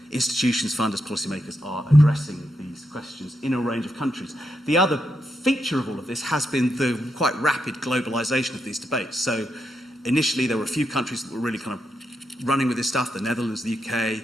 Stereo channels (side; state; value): both; normal; correlation 0.83